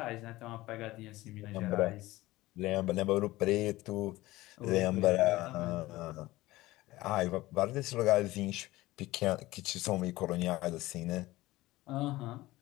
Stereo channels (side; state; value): right; quieter; 18.2 dB